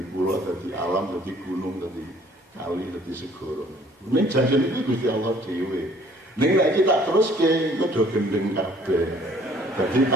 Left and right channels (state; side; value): normal; both; correlation 0.57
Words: kula, dadi alam, dadi gunung, dadi kali, dadi segara. Ning janjene iki Gusti Allah dhewe. Ning nek kita teruske engko do gendeng kabeh. Dadi